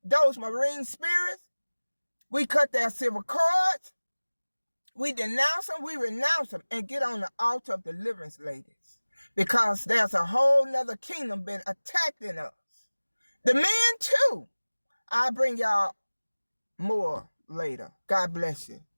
those marine spirits. We cut their civil cords. We denounce them, we renounce them, and get on the altar of deliverance, ladies. Because there's a whole nother kingdom been attacking us. The men too. I'll bring y'all more later. God bless you.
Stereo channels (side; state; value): both; inverted; correlation -1.00